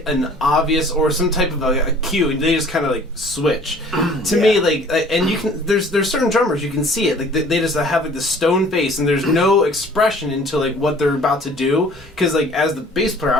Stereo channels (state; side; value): normal; both; correlation 0.51